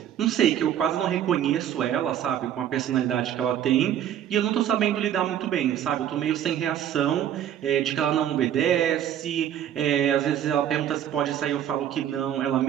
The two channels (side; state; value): left; quieter; 10.4 dB